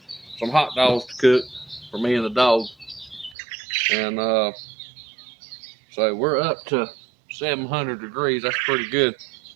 some hot dogs to cook for me and the dog. And so we're up to 700 degrees. That's pretty good.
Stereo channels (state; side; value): drops out; left; at 3.4 s